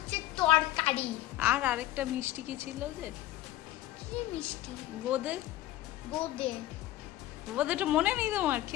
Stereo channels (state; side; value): quieter; right; 14.7 dB